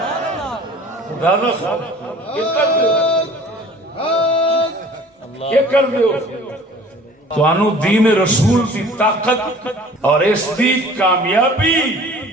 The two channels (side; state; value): both; normal; correlation 0.48